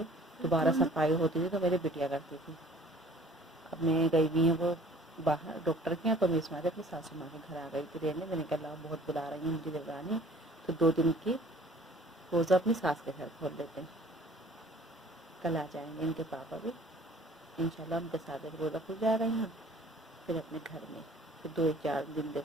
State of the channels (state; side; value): normal; both; correlation 0.52